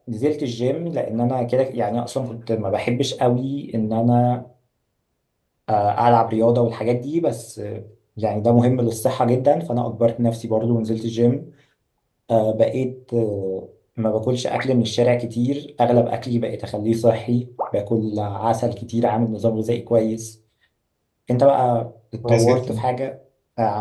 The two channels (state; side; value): identical; both; correlation 1.00